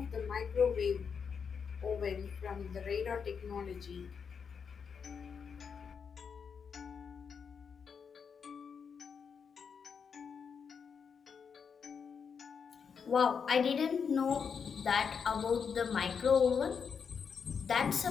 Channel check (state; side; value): quieter; right; 6.4 dB